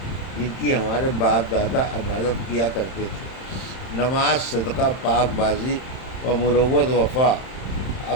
جن کی ہمارے باپ دادا عبادت کیا کرتے تھے۔ نماز، صدقہ، پاک بازی و مروت، وفا،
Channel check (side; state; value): right; late; 31 ms